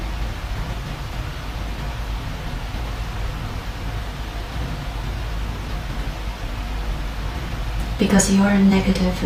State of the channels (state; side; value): identical; both; correlation 1.00